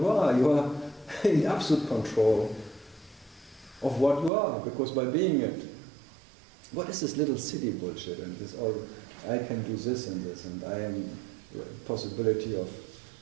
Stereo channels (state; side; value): drops out; left; at 4.3 s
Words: are in absolute control of what you are, because by being it, what is this little city bullshit and this all, I can do this and I am possibility of